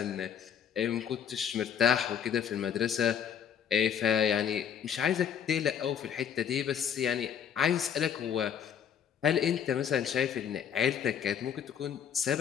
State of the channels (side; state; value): right; quieter; 8.3 dB